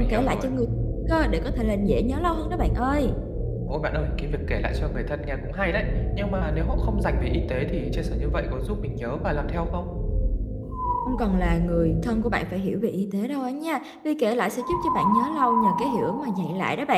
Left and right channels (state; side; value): identical; both; correlation 1.00